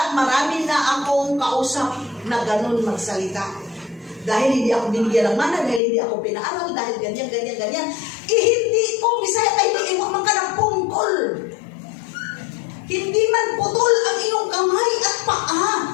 marami na akong kausap na ganun magsalita. Dahil hindi ako binigyan ng mana, dahil hindi ako pinaaral, dahil ganyan. Hindi ko, Bisaya, ay iiwan man ka ng pungkol. Hindi man putol ang iyong kamay at paa.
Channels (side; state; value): right; drops out; at 5.8 s